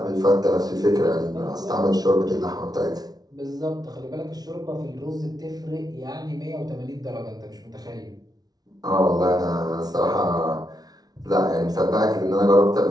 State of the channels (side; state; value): left; late; 0.19 ms